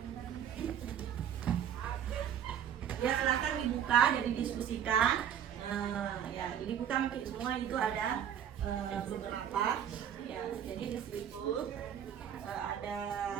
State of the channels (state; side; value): quieter; left; 9.3 dB